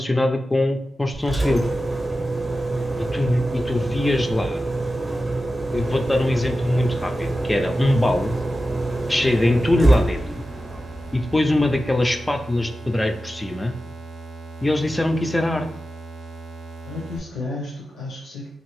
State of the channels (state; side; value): normal; both; correlation 0.93